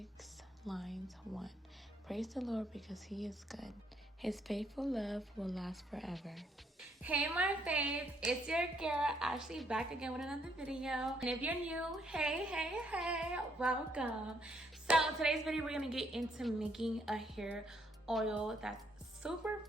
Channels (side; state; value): both; normal; correlation 0.71